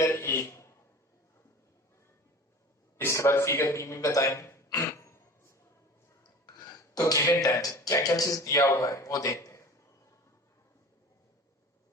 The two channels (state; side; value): normal; both; correlation 0.39